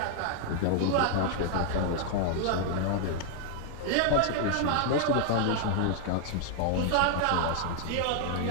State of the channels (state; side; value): different; both; correlation 0.00